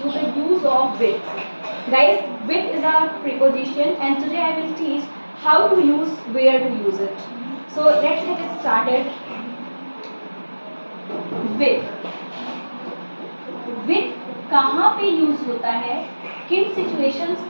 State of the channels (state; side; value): inverted; both; correlation -1.00